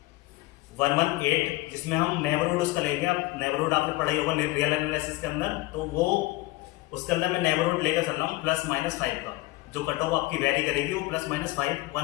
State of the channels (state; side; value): quieter; right; 20.0 dB